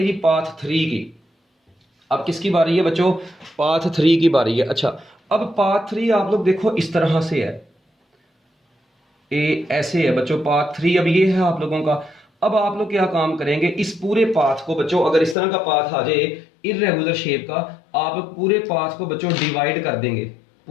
जी पाथ 3 की। अब किसकी बारी है बच्चों, पाथ 3 की बारी है। अच्छा अब पाथ 3 आप लोग देखो इस तरह से है, ऐसे है बच्चों पाथ 3, अब ये है आप लोगों का। अब आप लोग क्या काम करेंगे, इस पूरे पाथ को बच्चों, अगर इस तरह का पाथ आ जाए इररेगुलर शेप का, आप लोग पूरे पाथ को बच्चों डिवाइड कर देंगे,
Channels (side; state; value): right; drops out; at 15.4 s